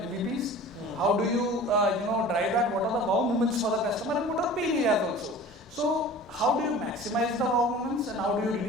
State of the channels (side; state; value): both; normal; correlation 0.41